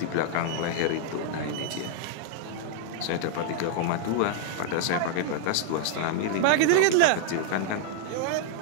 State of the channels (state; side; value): different; both; correlation -0.01